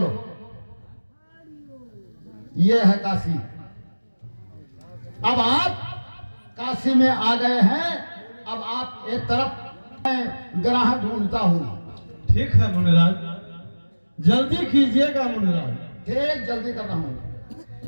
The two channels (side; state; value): both; inverted; correlation -1.00